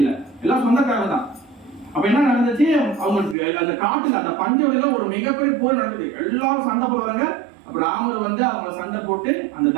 இல்ல, எல்லாம் சொந்தக்காரங்க தான். அப்ப என்ன நடந்துச்சு, அவங்களுக்கு அந்த காட்டுல அந்த பஞ்சவெளியில ஒரு மிகப்பெரிய போர் நடக்குது. எல்லாரும் சண்டை போடுவாங்க. அப்ப ராமர் வந்து அவங்க சண்டை போட்டு அந்த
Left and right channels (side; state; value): left; drops out; at 3.4 s